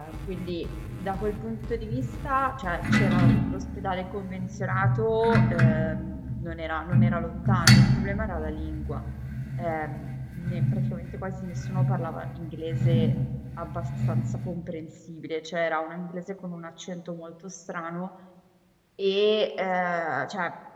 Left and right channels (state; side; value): identical; both; correlation 1.00